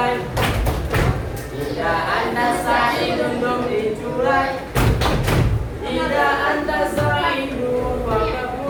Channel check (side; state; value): both; identical; correlation 1.00